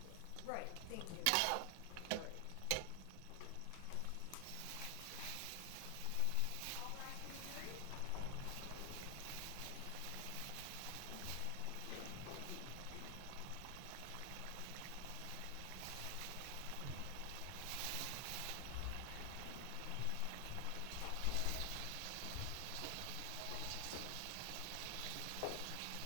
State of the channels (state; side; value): different; both; correlation 0.00